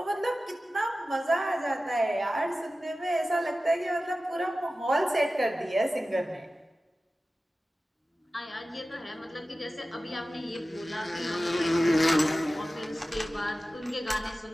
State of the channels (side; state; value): both; normal; correlation 0.95